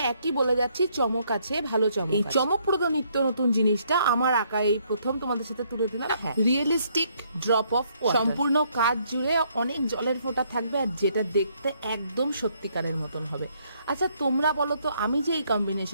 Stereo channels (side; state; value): both; inverted; correlation -0.69